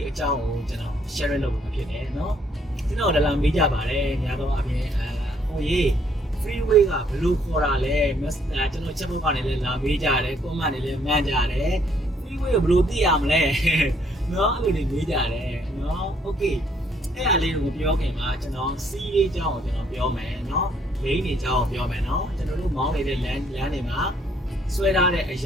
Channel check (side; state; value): both; normal; correlation 0.67